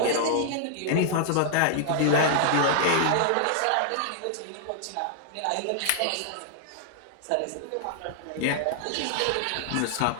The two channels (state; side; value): different; both; correlation -0.01